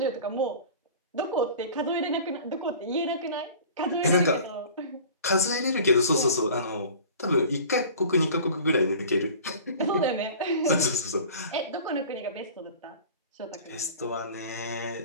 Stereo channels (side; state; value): both; inverted; correlation -0.41